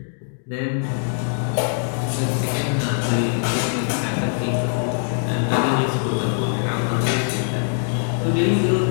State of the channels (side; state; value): right; silent; digital silence